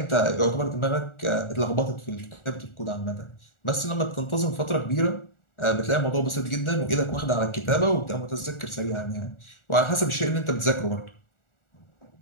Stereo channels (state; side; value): late; right; 1.4 ms